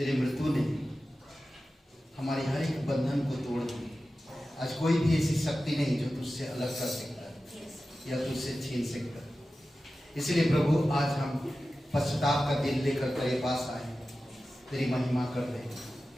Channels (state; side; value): normal; both; correlation 0.94